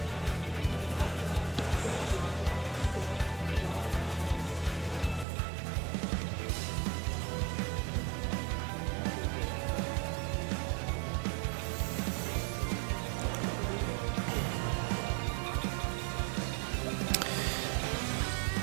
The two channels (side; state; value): left; drops out; at 5.2 s